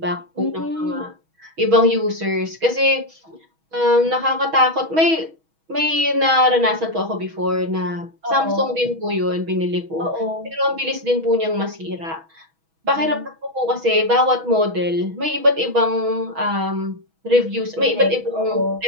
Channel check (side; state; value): left; late; 6.2 ms